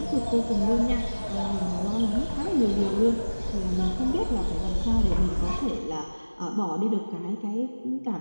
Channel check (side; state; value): both; inverted; correlation -1.00